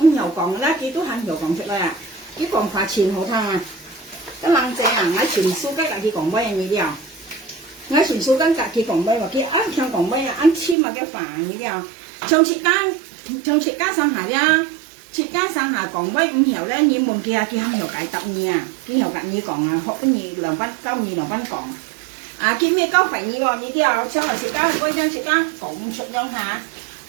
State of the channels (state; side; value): drops out; left; at 10.8 s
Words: nhiều còn đó cái tôi hàng nhiều còn chút đây à cái còn phải chìm hậu thang à cái lăng trẻ à ngay chuyển số các cái còn bay như thế nào ngay chuyển số các cái còn bay và cái ăn theo còn bay ăn chim mà cái phản như thế nào trong chị cá sang hà ra chị cá sang hà còn bay không hiểu đấy như một kia không hiểu cái tập nha cái hiểu cái như còn họ cái gì làm văn câu như làm văn còn à cái mấy câu phải như thế nào xong rồi chị cá quay ra chị cá cũng chụp nhau hà